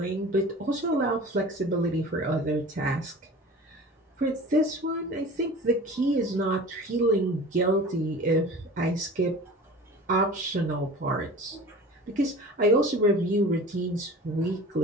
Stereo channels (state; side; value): normal; both; correlation 0.39